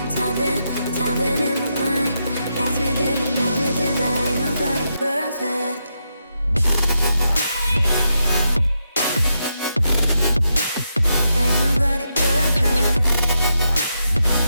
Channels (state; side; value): inverted; both; correlation -0.83